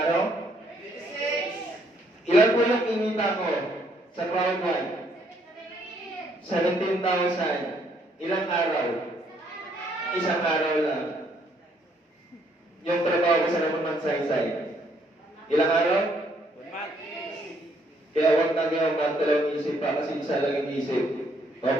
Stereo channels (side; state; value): both; normal; correlation 0.69